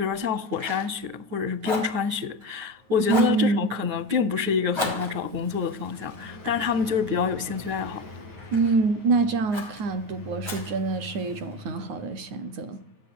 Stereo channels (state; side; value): late; left; 9.4 ms